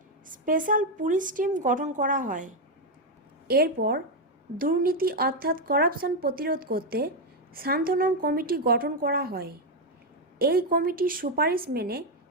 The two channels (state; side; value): normal; both; correlation 0.04